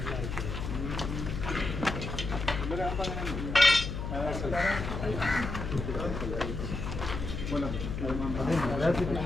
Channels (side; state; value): left; noise; hum, 4 dB below the sound